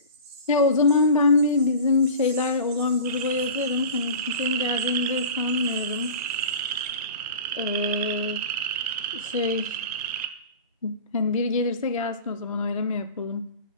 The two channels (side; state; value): both; inverted; correlation -0.36